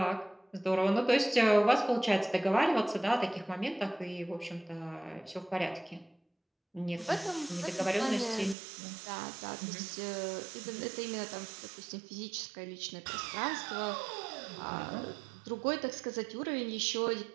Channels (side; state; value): left; drops out; at 8.6 s